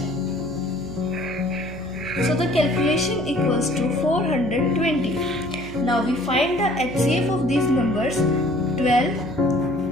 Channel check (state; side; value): noise; left; hum, 18 dB below the sound